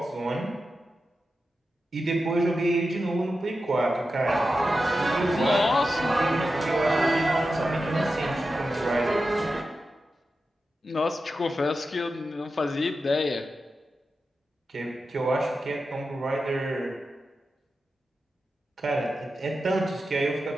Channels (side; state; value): both; normal; correlation 0.91